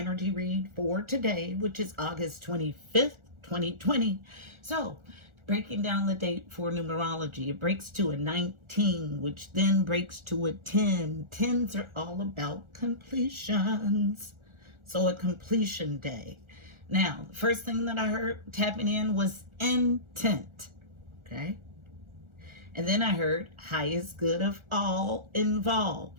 read for today, which is August 25th, 2020. So, breaking down the date for numerology, it breaks to a 19, which then breaks to a 10. 10s are all about completions. So, a completion day. Now, the first thing that I heard tapping in was intent. Okay. And then I heard highest good of all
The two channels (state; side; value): late; left; 1.4 ms